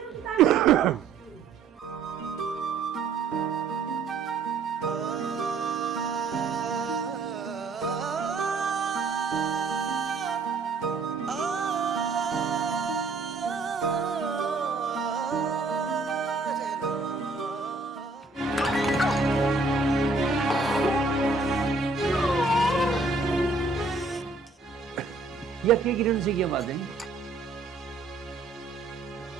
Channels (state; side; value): quieter; left; 4.1 dB